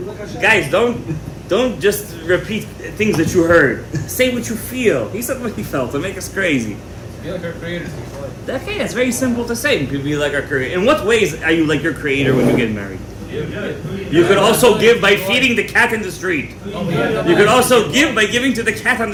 Guys, don't just repeat things that you heard. Say what you feel. He said what he felt to make us crazy. Be like our creators. Okay, that's very simple to say. You could be like our creator. In what ways are you like your creator when you get married? You could also give by feeding the cat in the street. You could also give by giving to the cat on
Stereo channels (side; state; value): both; identical; correlation 1.00